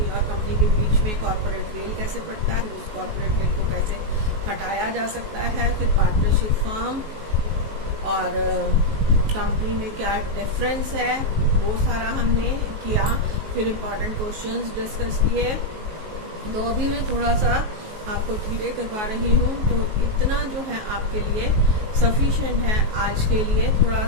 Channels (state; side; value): late; left; 19 ms